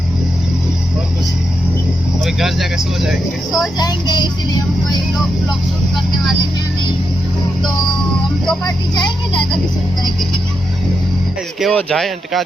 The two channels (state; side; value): normal; both; correlation 0.85